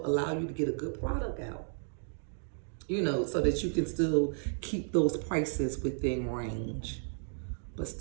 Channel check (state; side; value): silent; left; 56 dB below the other